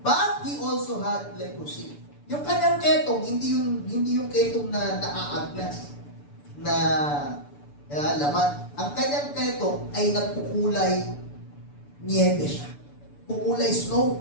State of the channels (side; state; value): right; late; 6.9 ms